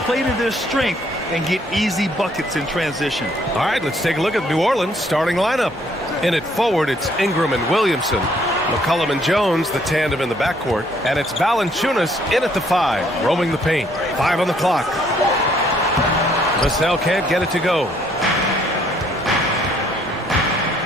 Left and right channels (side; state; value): both; normal; correlation 0.65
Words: play to their strength and get easy buckets in transition. All right, let's take a look at New Orleans' starting lineup. In it forward, it's Ingram and Williamson. McCollum and Jones, the tandem in the backcourt. And it's Valanciunas in at the 5, roaming the paint. 5 on the clock. Vassell can't get it to go.